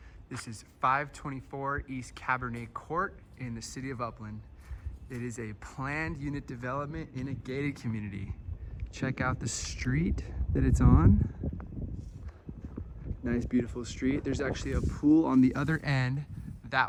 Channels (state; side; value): identical; both; correlation 1.00